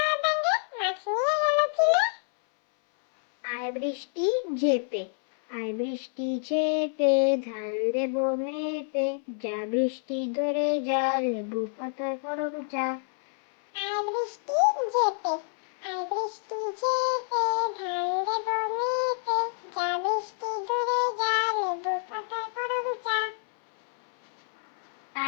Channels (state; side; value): silent; right; 59 dB below the other